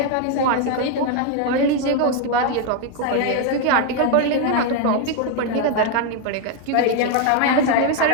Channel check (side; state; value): both; different; correlation 0.01